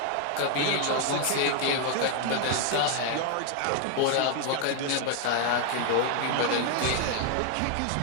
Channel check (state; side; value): different; both; correlation 0.00